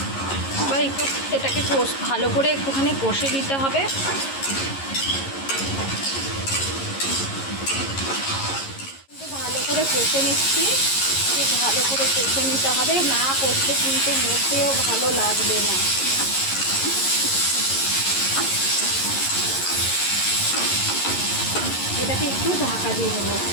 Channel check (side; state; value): right; late; 11 ms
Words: এবার একটু এটাকে ভালো করে একটুখানি কষে নিতে হবে। ভালো করে কষে নিচ্ছি, ভালো করে কষে নিতে হবে, না কষলে কিন্তু মোটেও ভালো লাগবে না। এটাকে একটু ঢাকা দিয়ে দেবো।